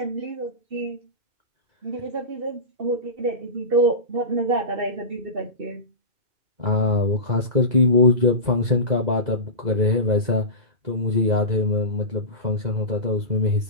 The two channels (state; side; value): late; left; 2.0 ms